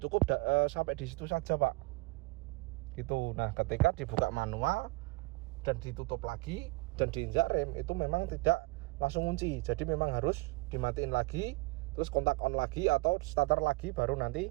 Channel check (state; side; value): quieter; left; 24.7 dB